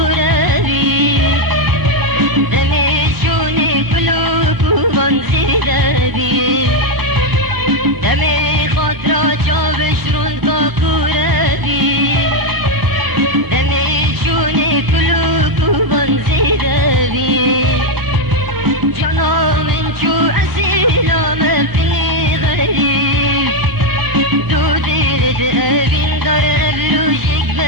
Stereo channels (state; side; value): late; left; 1.0 ms